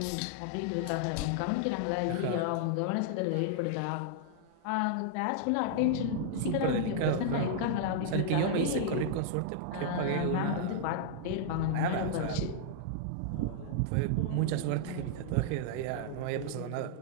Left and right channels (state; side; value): different; both; correlation -0.01